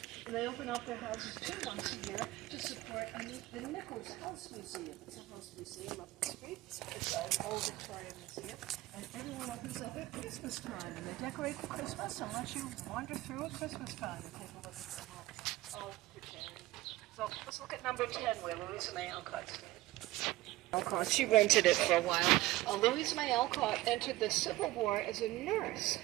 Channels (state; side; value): quieter; left; 17.8 dB